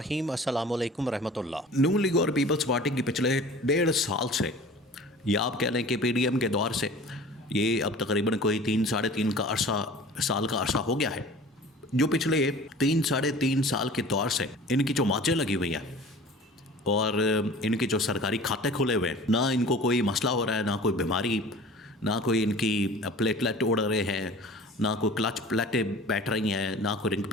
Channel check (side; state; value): both; normal; correlation 0.43